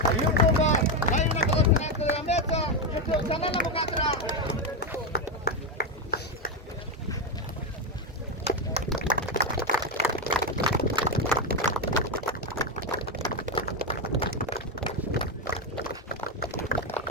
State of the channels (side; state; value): both; normal; correlation 0.09